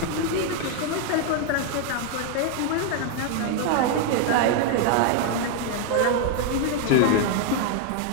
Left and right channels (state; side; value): different; both; correlation 0.00